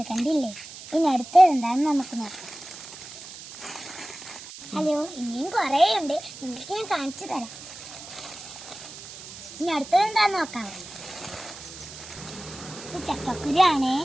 കണ്ടില്ലേ. ഇനി അടുത്തത് എന്താണെന്ന് നമുക്ക് നോക്കാം. ഹലോ, ഇനിയും കുറേ ഉണ്ട്, നിങ്ങൾക്ക് ഞാൻ കാണിച്ചു തരാം. ഇനി അടുത്തത് എന്താന്ന് നോക്കാം. ചക്കക്കുരിയാണേ.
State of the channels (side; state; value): right; noise; hiss, 14 dB below the sound